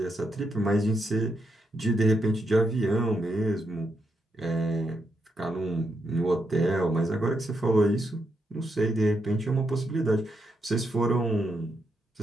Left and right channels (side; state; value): both; normal; correlation 0.81